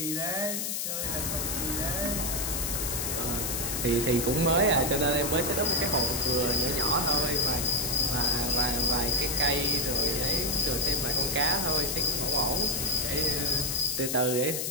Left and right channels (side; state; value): left; noise; hiss, 1 dB below the sound